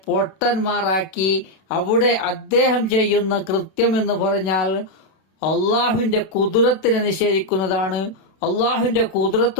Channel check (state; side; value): late; right; 31 ms